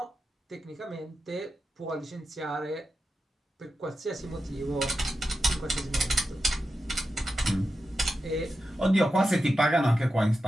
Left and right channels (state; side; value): normal; both; correlation 0.90